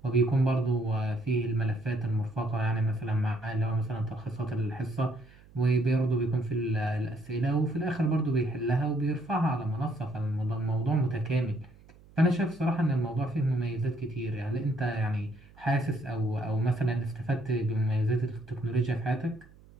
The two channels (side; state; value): right; noise; hum, 25 dB below the sound